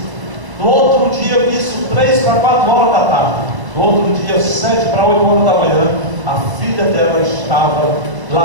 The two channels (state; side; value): late; left; 1.0 ms